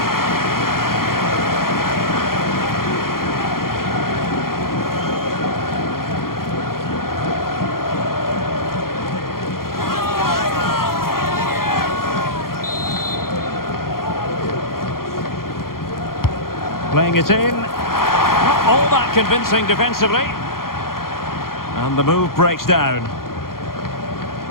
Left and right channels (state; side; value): late; right; 0.92 ms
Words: Playing it in. Not all that convincing defensively. And the move breaks down.